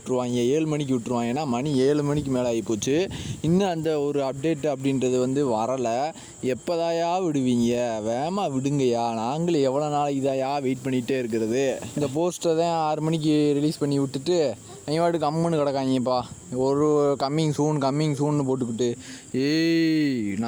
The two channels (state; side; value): identical; both; correlation 1.00